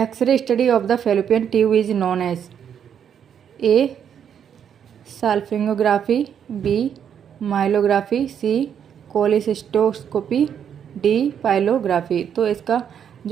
study of the fallopian tube is known as. A salpingography, B myelography, C cholecystoscopy, D pyelography. तो इसका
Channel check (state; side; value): quieter; left; 8.4 dB